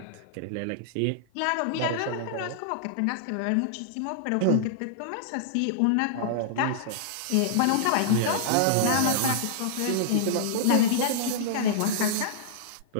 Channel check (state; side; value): different; both; correlation -0.02